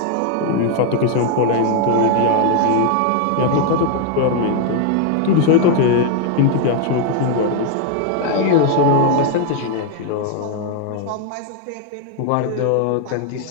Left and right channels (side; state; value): both; different; correlation 0.00